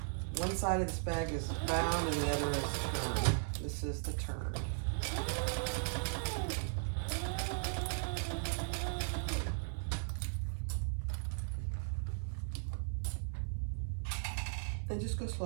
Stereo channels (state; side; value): silent; left; 53 dB below the other